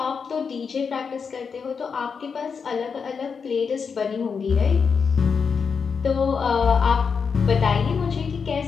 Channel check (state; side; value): quieter; right; 5.8 dB